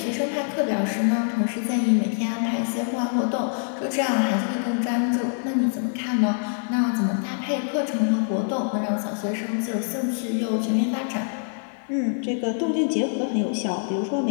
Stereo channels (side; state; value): right; silent; 59 dB below the other